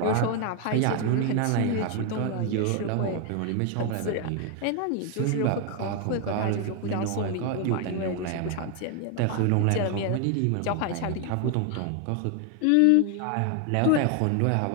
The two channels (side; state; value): both; different; correlation 0.01